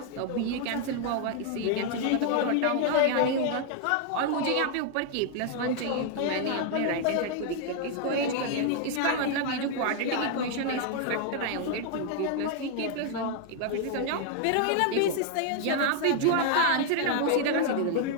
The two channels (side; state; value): both; different; correlation 0.00